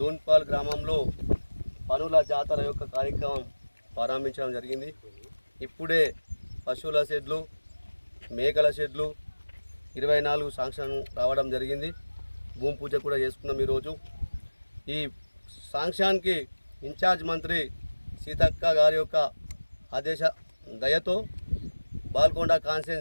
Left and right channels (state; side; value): inverted; both; correlation -1.00